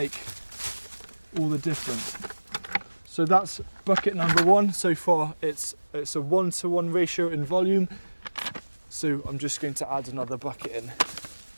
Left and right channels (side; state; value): both; inverted; correlation -1.00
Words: all the difference. So that's bucket number 1. So far it's a 1-to-1 ratio in volume. So I'm just going to add another bucket in.